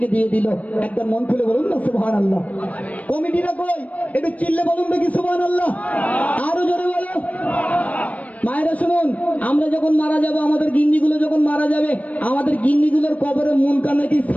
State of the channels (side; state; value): right; late; 0.069 ms